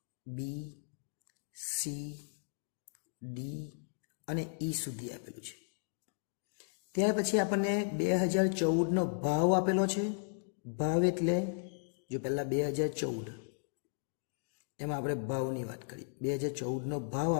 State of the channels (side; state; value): right; silent; digital silence